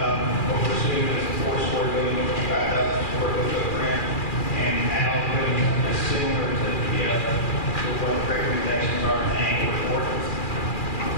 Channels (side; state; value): right; late; 2.4 ms